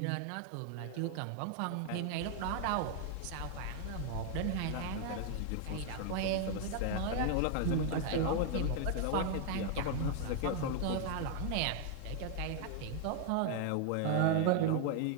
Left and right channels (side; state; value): both; different; correlation 0.00